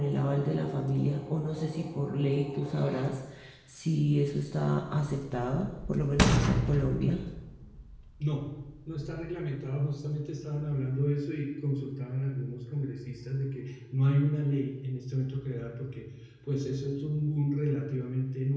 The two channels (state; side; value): identical; both; correlation 1.00